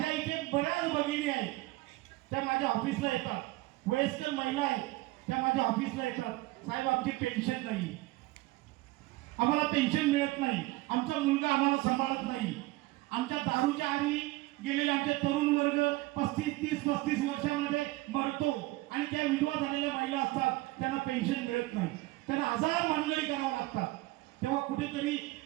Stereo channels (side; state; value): left; quieter; 19.9 dB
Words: इथे बऱ्याच भगिनी आहेत, त्या माझ्या ऑफिसला येतात. वयस्कर महिला आहेत, त्या माझ्या ऑफिसला येतात. साहेब आमची पेन्शन नाही, आम्हाला पेन्शन मिळत नाही, आमचा मुलगा आम्हाला सांभाळत नाही, आमच्या दारूच्या आरी गेलेले आमचे तरुण वर्ग 35 वर्षामध्ये मरतो आणि त्या विधवा झालेल्या महिला असतात, त्यांना पेन्शन मिळत नाही, त्यांना 1000 मानगडी करावं लागतात. तेव्हा कुठेतरी